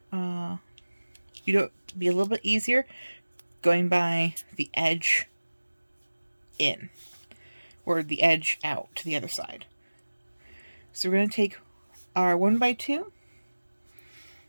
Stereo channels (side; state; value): both; inverted; correlation -1.00